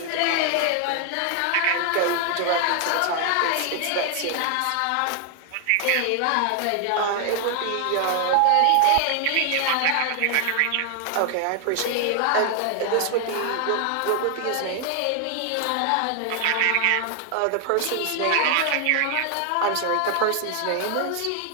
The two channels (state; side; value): different; both; correlation 0.00